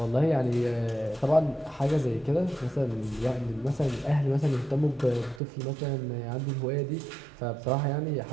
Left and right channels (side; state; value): left; drops out; at 5.4 s